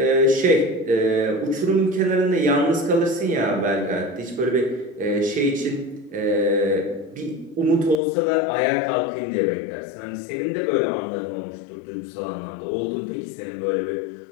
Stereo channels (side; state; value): right; drops out; at 8.0 s